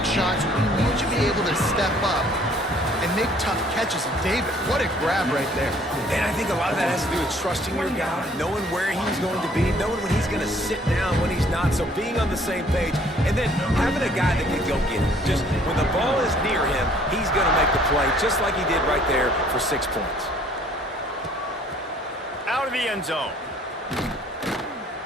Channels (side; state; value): both; normal; correlation 0.59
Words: shots. We need you to be able to step up and make tough catches. And David, what a grab right there. And I think a lot of that has to do with trusting your guy, knowing where he's going to be, knowing when he's going to sit down, when he's not. So being on the same page, and then having a guy that can go get it. Just when the ball is near him, he's going to make the play, just like he did right there for 6 points. Out of the end zone.